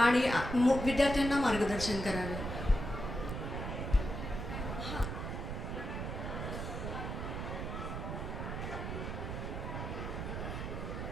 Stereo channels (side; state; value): right; noise; rumble, 4 dB below the sound